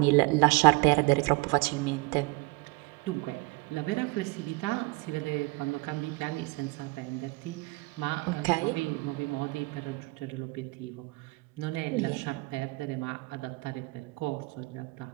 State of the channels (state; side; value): quieter; left; 24.6 dB